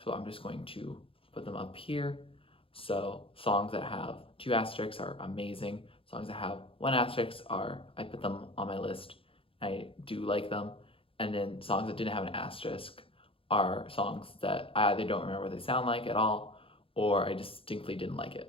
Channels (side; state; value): right; late; 0.27 ms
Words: so I'm just going to put them up here. So songs that have 2 asterisks are amazing. Songs that have 1 asterisk I put them on my list. I do like them. And then songs that didn't have an asterisk are songs that I either don't remember what they sound like at all, or I distinctly didn't like